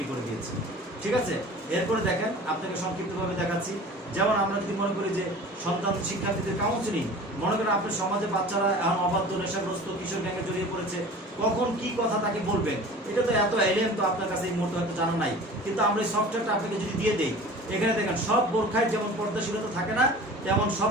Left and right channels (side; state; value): both; normal; correlation 0.41